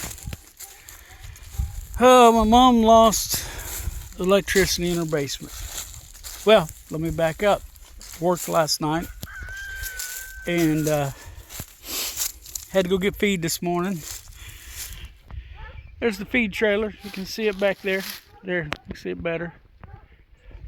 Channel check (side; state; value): both; identical; correlation 1.00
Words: Oh, my mom lost electricity in her basement. Well, let me back up. Worked last night and had to go get feed this morning. There's the feed trailer. You can see it back there. There, you can see it better.